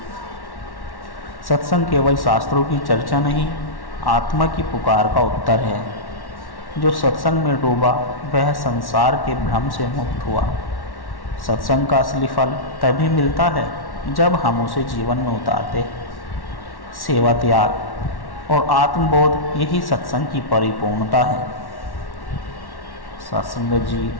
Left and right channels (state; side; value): late; right; 1.1 ms